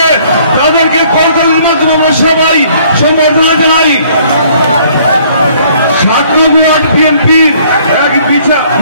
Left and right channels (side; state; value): both; inverted; correlation -0.60